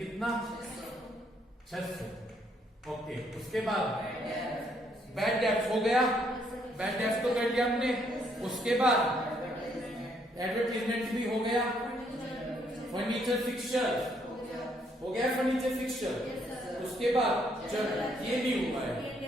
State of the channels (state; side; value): normal; both; correlation 0.70